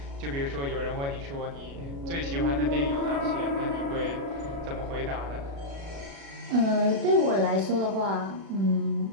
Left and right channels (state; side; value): late; left; 36 ms